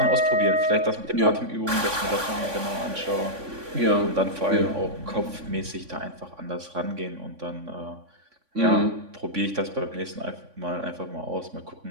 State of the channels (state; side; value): late; left; 3.5 ms